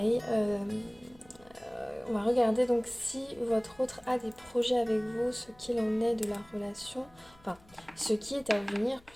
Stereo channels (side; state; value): left; noise; hum, 28 dB below the sound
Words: on va regarder donc si votre autre a des projets avec vous, ce qu'il en est de la relation, enfin ce qui est à venir